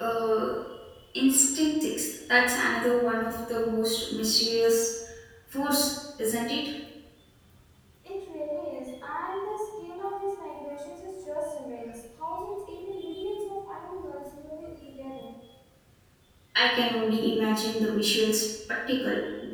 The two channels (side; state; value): both; identical; correlation 1.00